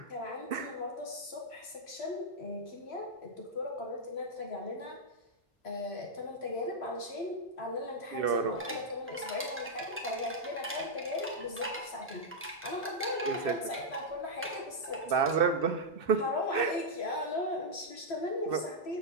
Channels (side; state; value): both; normal; correlation -0.05